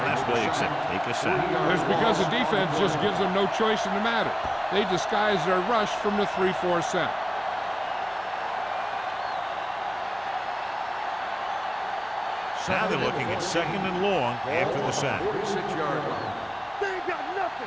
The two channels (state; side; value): identical; both; correlation 1.00